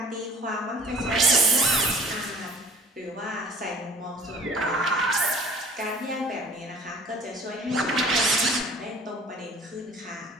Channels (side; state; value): both; normal; correlation 0.50